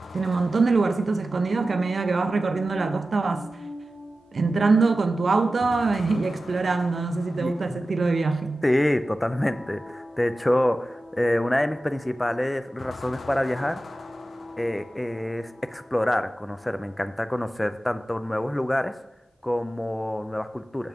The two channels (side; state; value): both; normal; correlation 0.94